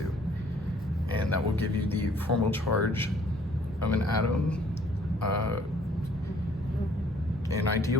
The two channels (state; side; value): normal; both; correlation 0.60